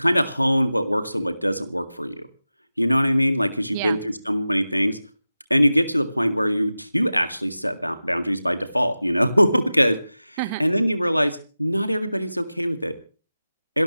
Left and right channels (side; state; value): both; inverted; correlation -0.95